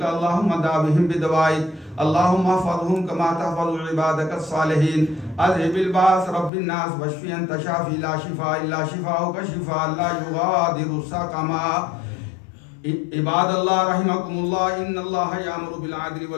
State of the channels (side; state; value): right; drops out; at 6.5 s